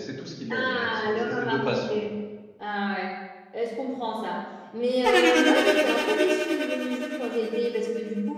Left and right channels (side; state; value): both; identical; correlation 1.00